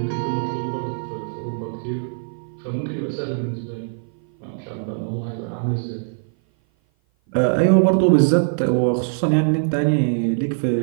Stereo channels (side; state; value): left; silent; 56 dB below the other